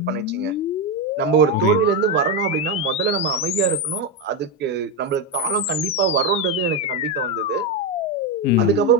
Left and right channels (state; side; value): normal; both; correlation 0.09